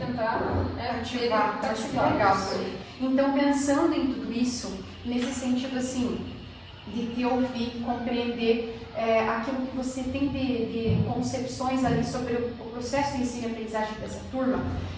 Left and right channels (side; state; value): both; identical; correlation 1.00